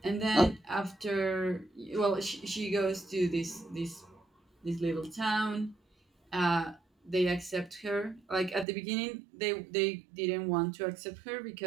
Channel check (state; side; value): drops out; left; at 8.7 s